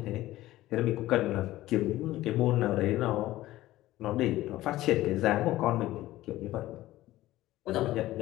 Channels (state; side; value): quieter; right; 16.0 dB